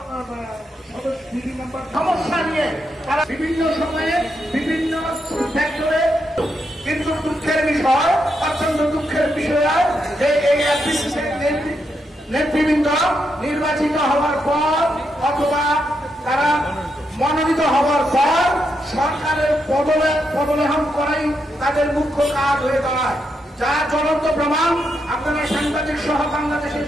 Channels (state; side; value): normal; both; correlation 0.82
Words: বিভিন্ন সমস্যা নিয়ে তারা বিভিন্ন সময়ে বিভিন্ন সেক্টরে, কিন্তু দুঃখের বিষয়, অত্যন্ত দুঃখের বিষয় যে এই নেতৃবৃন্দ নির্বাচিত হওয়ার পর অথবা তারা মনোনীত হওয়ার পর সরকারের পদলেহন করাই তাদের মুখ্য কাজ হয়ে দাঁড়ায়, যা জ্বলন্ত প্রমাণ। আপনারা সাংবাদিক সহ বাংলাদেশের